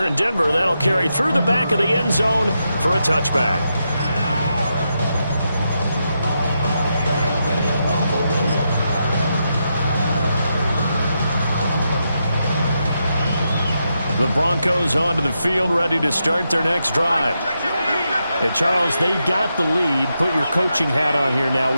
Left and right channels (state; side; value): inverted; both; correlation -0.84